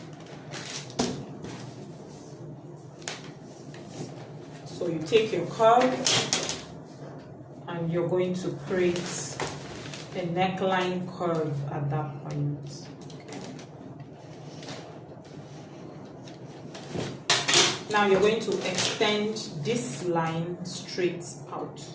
So you take your curve and you're going to create a neckline curve at that point. Now you're going to extend this line straight out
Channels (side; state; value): both; identical; correlation 1.00